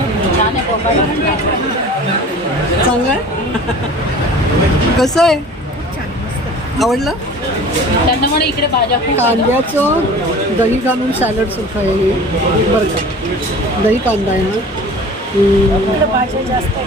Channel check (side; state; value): both; normal; correlation 0.42